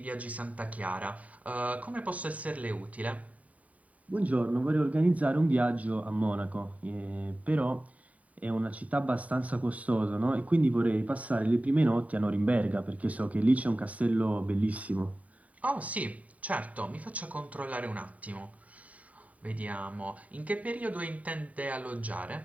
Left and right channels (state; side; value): late; left; 0.069 ms